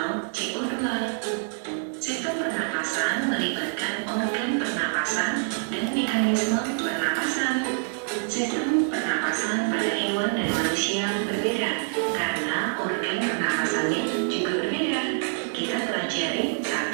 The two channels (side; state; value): left; silent; 61 dB below the other